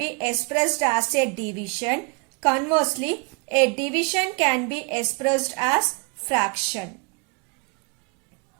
expressed as a division. Conversely, a division can be expressed as fraction.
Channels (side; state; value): left; quieter; 32.9 dB